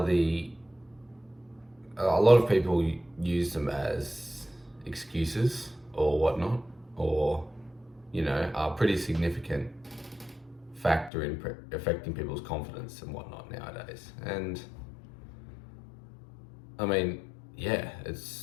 a lot of people use them as excuses or whatnot, or, are pretty significant factor in affecting people's confidence and whatnot nowadays. And I mean, yeah,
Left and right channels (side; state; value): right; drops out; at 11.1 s